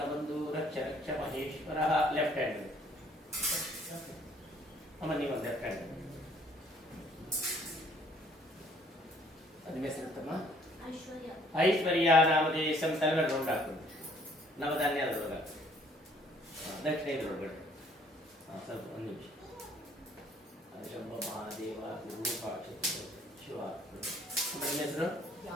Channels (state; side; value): normal; both; correlation 0.61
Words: ರಕ್ಷ ರಕ್ಷ ಮಹೇಶ್ವರ ಲೆಫ್ಟ್ ಹ್ಯಾಂಡ್ ಅಮ್ಮ ನೀವು ಲೆಫ್ಟ್ ಹ್ಯಾಂಡ್ ಹೆಸರುತ್ತಮ್ಮ ಐಶ್ವರ್ಯ ನಾಮದೇಶಂ ತಲೆಮೇಲೆ ರೌಂಡ್ ಹಾಕೊಂಡು ನವಧಾನ್ಯ ಅದರೊಳಗೆ ದಕ್ಷಿಣ ಇದರೊಳಗಡೆ ಸ್ವಲ್ಪ ಒಂದು ನಿಮಿಷ ಶಂಭ ಮಹಾದೇವ ಶಿವ ಹೆಸರು